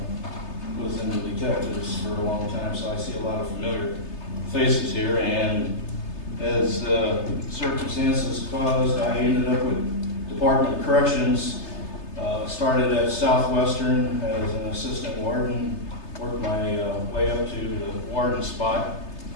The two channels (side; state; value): right; late; 3.3 ms